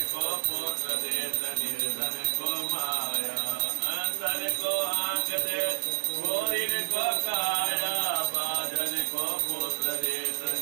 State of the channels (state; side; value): silent; left; 58 dB below the other